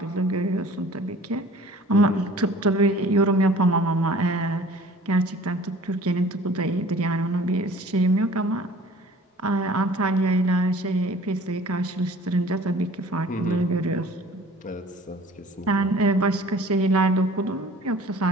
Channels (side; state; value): both; normal; correlation 0.48